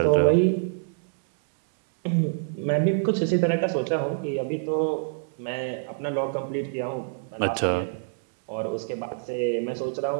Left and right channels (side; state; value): left; silent; digital silence